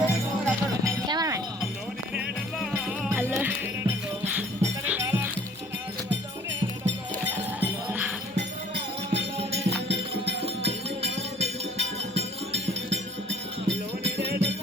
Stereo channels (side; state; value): both; normal; correlation 0.54